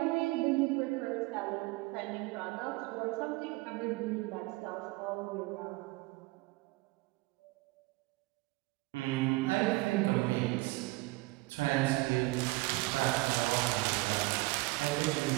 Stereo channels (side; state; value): left; quieter; 23.0 dB